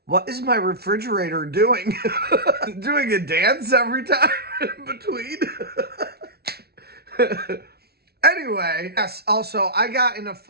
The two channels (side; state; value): left; late; 0.46 ms